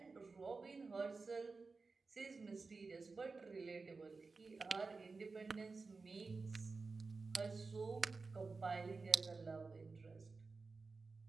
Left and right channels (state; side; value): quieter; left; 4.2 dB